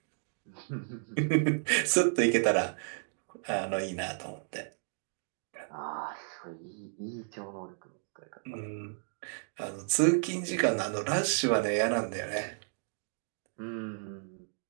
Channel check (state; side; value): silent; left; digital silence